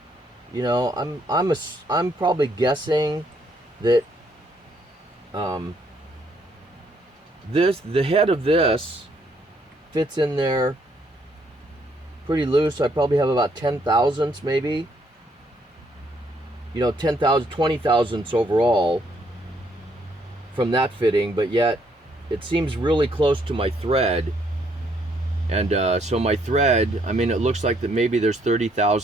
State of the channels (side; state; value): both; normal; correlation 0.70